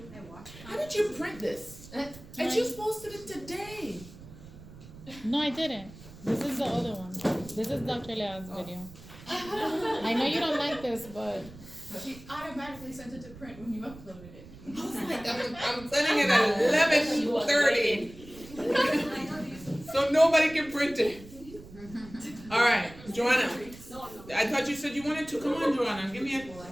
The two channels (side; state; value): right; noise; rumble, 18 dB below the sound